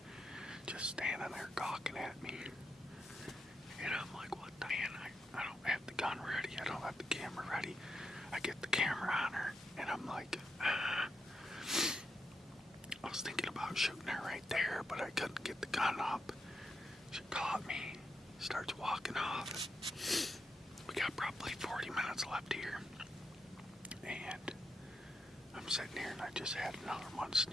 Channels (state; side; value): normal; both; correlation 0.81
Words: just standing there gawking at me. And I'm like, what the man? I don't have the gun ready. I don't have the camera ready. I get the camera on her, and I'm like, I was thinking about shooting her right there, but I couldn't get the gun up. She caught me, starts walking off. We got probably 40 minutes left here. And I'm sitting here and I just had another one